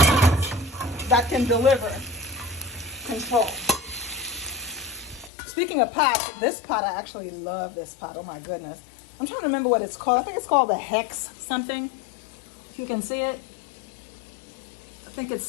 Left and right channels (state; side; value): drops out; right; at 5.3 s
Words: pots that can deliver control. Speaking of pots, this pot, I actually love this pot. Oh my goodness. I'm trying to remember what it's called. I think it's called the Hex something. If you can see it. I think it